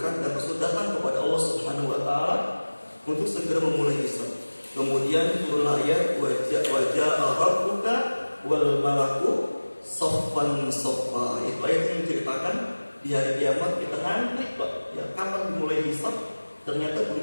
dan Rasul datang kepada Allah Subhanahu wa taala untuk segera memulai hisab. Kemudian turunlah ayat wajah rabbuka wal malaku saffan saffa. Itu ayat yang menceritakan di hari kiamat kita ngantri, Pak, ya, kapan dimulai hisab? Ternyata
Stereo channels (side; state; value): both; inverted; correlation -1.00